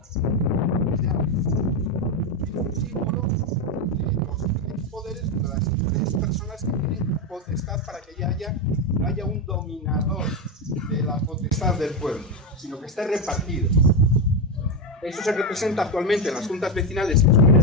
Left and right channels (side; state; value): both; normal; correlation 0.10